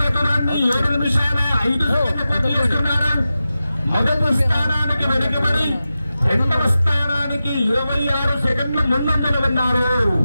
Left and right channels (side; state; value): both; inverted; correlation -0.93